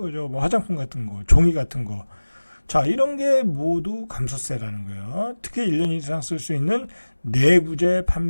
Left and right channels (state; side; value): inverted; both; correlation -1.00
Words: 뭐 화장품 같은 거, 종이 같은 거. 자, 이런 게 모두 감소세라는 거예요. 특히 1년 이상 쓸 수 있는 내구재